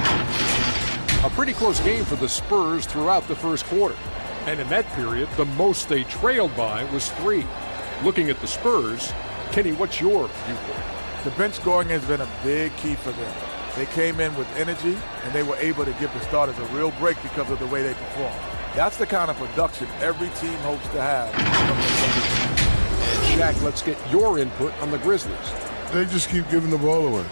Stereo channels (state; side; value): inverted; both; correlation -1.00